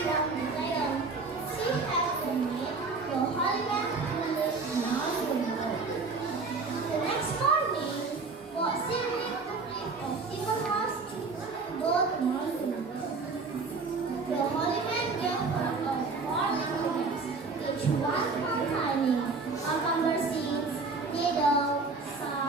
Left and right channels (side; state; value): left; quieter; 4.1 dB